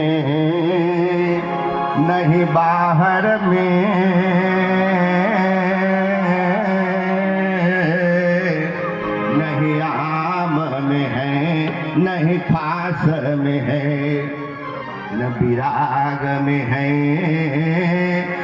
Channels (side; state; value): both; identical; correlation 1.00